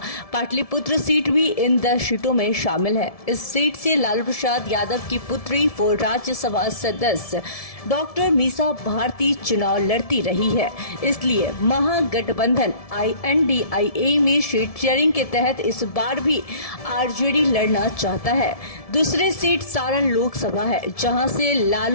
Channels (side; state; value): right; late; 1.7 ms